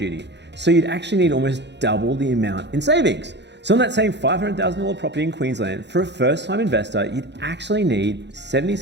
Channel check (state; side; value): late; left; 0.51 ms